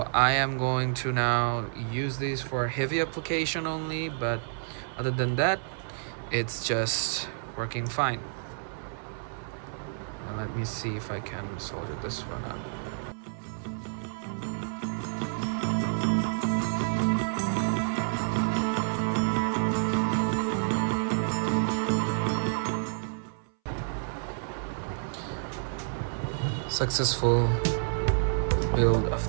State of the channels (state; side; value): silent; left; 58 dB below the other